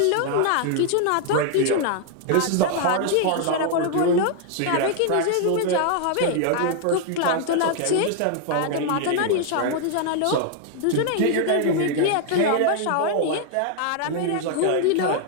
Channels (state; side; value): different; both; correlation 0.00